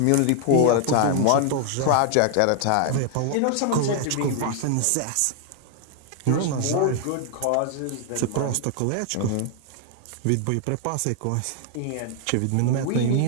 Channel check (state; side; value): different; both; correlation 0.00